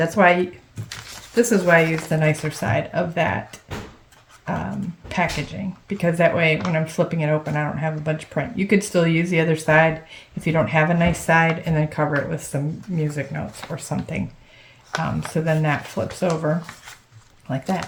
why, this is why I use the nicer side of that packaging, because that way when I'm flipping it open I don't have a bunch of print. You could still use the other side if you don't have a nice side, and then cover it with some music notes or something. So then that flips over like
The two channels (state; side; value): identical; both; correlation 1.00